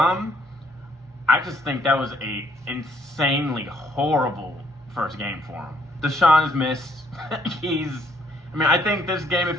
I just think that was a insanely horrible first game for him. Deshaun is missed. I think this game,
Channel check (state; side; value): normal; both; correlation 0.67